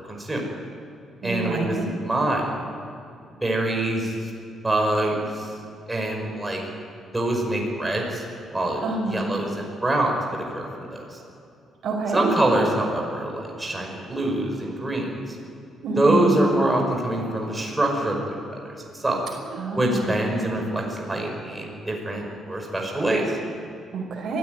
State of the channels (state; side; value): normal; both; correlation 0.80